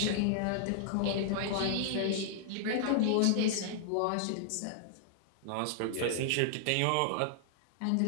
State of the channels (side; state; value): both; different; correlation -0.01